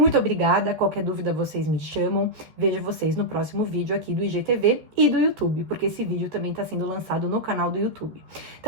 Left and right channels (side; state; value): left; late; 13 ms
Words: obrigada, qualquer dúvida vocês me chamam, vejo vocês no próximo vídeo aqui do IGTV e do YouTube, porque esse vídeo também está sendo lançado no canal do YouTube.